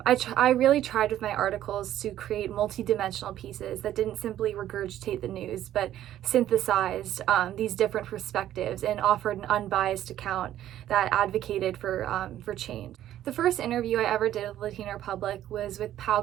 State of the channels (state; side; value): quieter; left; 12.3 dB